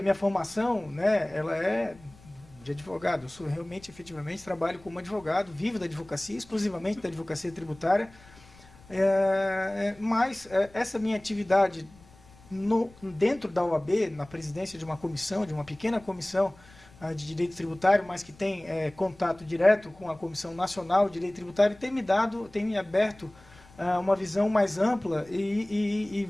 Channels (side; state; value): left; noise; rumble, 24 dB below the sound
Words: minha formação, né, ela é de advogado. Eu sou realmente, efetivamente, trabalho como advogado, vivo da advocacia, exclusivamente da advocacia tributária, mas essa minha atividade dentro da OAB, na presidência de uma comissão, de uma pequena comissão de direito tributário, mas que tem contato direto com a Comissão Nacional de Direito Tributário, tem me aberto uma visão mais ampla e,